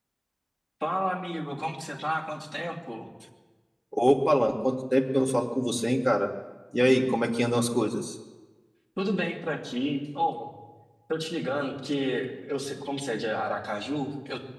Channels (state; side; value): identical; both; correlation 1.00